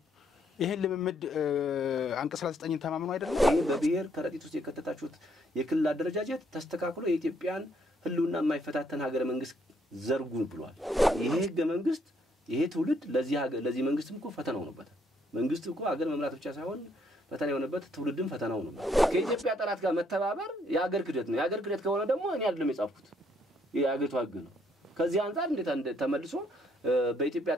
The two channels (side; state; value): both; normal; correlation 0.69